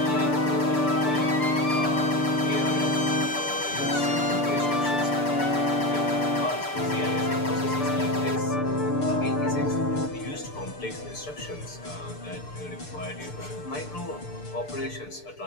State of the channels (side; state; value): right; late; 6.8 ms